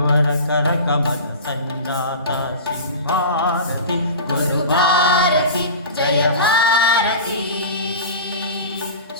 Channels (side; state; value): both; inverted; correlation -0.33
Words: ಕರಕಮಲ ಸಂಜಾತ ಶ್ರೀ ಭಾರತಿ ಗುರು ಭಾರತಿ